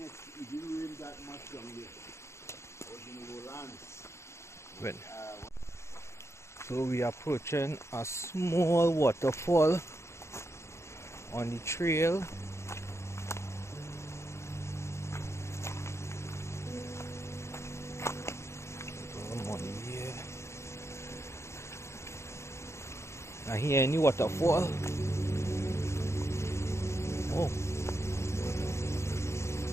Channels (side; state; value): right; late; 0.13 ms